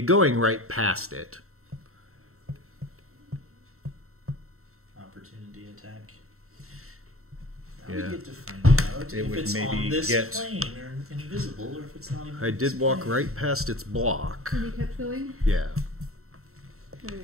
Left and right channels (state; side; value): late; left; 0.63 ms